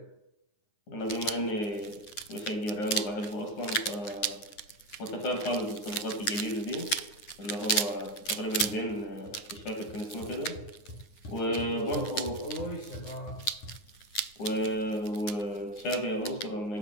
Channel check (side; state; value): right; late; 9.7 ms